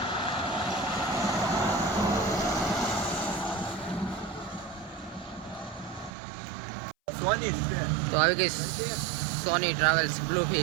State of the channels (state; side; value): drops out; left; at 6.1 s